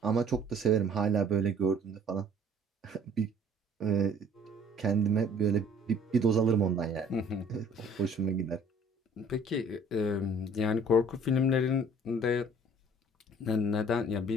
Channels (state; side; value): normal; both; correlation 0.55